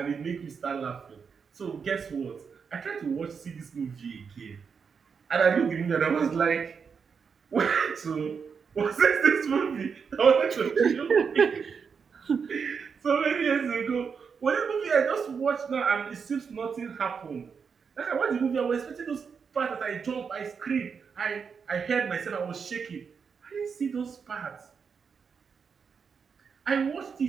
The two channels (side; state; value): left; quieter; 6.1 dB